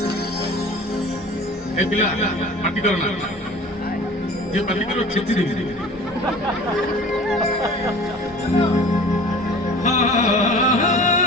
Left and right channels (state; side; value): normal; both; correlation 0.43